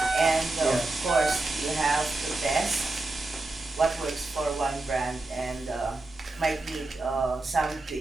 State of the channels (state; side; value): quieter; left; 3.0 dB